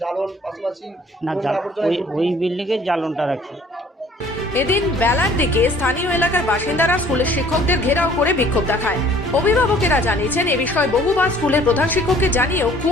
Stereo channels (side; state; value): both; normal; correlation 0.55